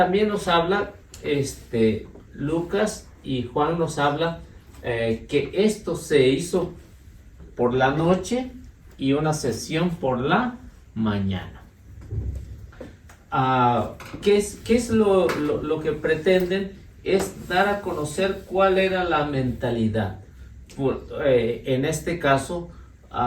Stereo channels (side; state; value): both; identical; correlation 1.00